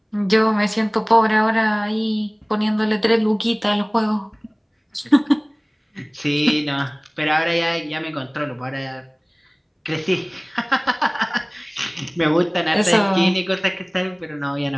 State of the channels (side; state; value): both; identical; correlation 1.00